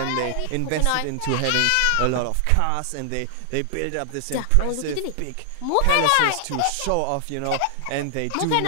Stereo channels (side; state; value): both; different; correlation 0.00